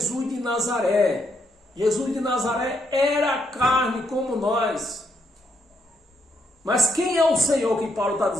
de Nazaré. Jesus de Nazaré era carne como nós. Mas quem é o Senhor que Paulo está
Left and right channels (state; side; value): normal; both; correlation 0.76